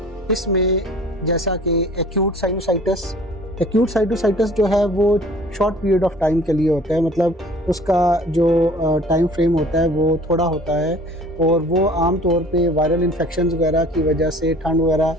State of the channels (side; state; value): both; normal; correlation 0.49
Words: इसमें जैसा कि एक्यूट साइनोसाइटस। एक्यूट साइनोसाइटस जो है वो शॉर्ट पीरियड ऑफ टाइम के लिए होता है, मतलब उसका जो टाइम फ्रेम होता है वो थोड़ा होता है और वो आम तौर पे वायरल इन्फेक्शंस वगैरह की वजह से, ठंड वगैरह